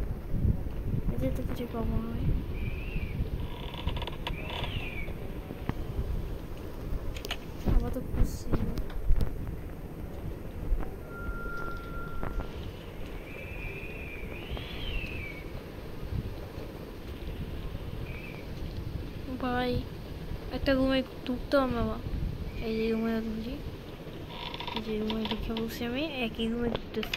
এদের তো কিছু পাবো হয়। আবার তো খুশি ভাই, একটা রুমে ঢুকতে হবে বাবা। এই যে রুমে ঢুকছি, এই যে রুমে ঢুকে বসে আমি একই রুমে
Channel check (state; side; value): identical; both; correlation 1.00